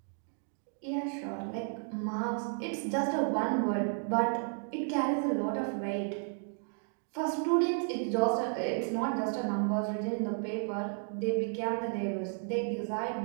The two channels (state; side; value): silent; left; 56 dB below the other